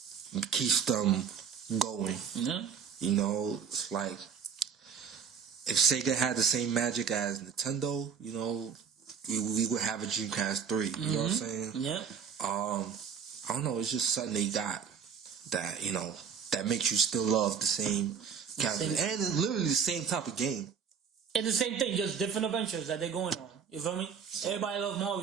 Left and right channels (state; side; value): quieter; left; 6.9 dB